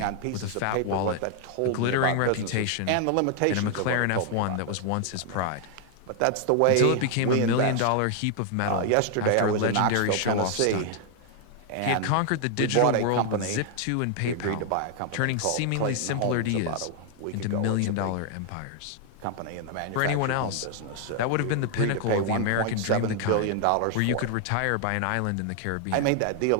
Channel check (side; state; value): both; different; correlation 0.00